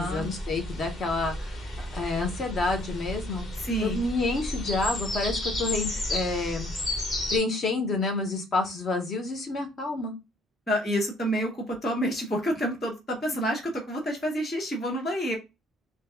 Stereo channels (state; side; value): normal; both; correlation 0.62